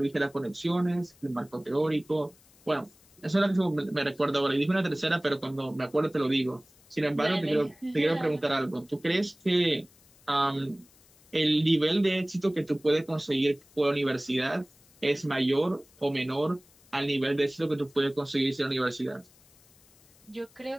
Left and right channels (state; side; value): noise; left; hiss, 29 dB below the sound